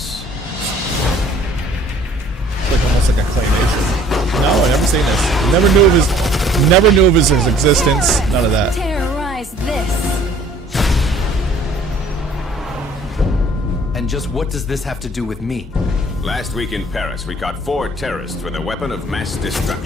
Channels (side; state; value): both; normal; correlation 0.55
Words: It's like almost like a claymation. No, I never seen this. Never knew of his existence. None of that. Terrorize this. And just what does this have to do with me? Last week in Paris, we caught 4 terrorists with a weapon of mass